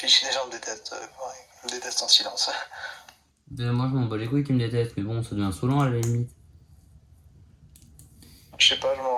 si les gens me détestent. Ouais, ils me détestent en silence. Moi je m'en bats les couilles qui me détestent, mais bon, ça devient saoulant à la limite. Je sais pas, je m'en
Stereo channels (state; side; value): identical; both; correlation 1.00